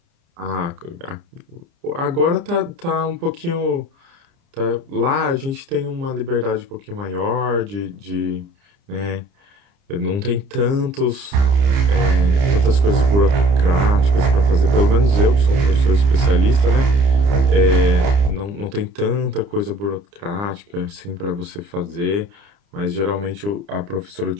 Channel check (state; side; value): late; left; 30 ms